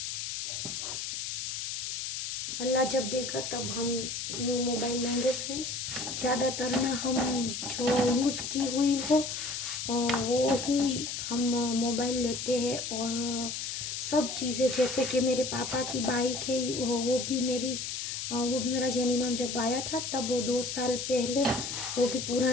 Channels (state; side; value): noise; left; hiss, 4 dB below the sound